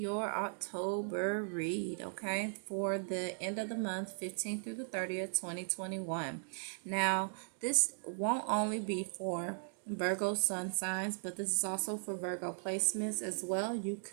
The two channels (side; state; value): left; silent; digital silence